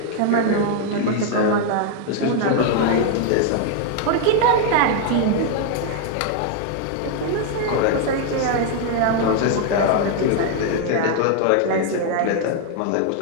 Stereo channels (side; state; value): both; different; correlation 0.00